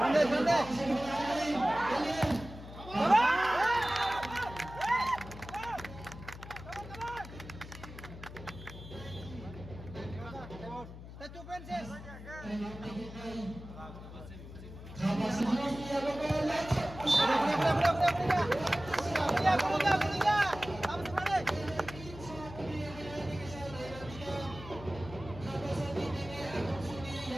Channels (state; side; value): noise; left; hum, 13 dB below the sound